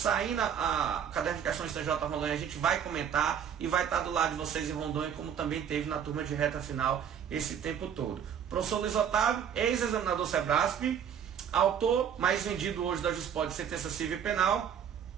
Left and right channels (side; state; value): left; quieter; 8.4 dB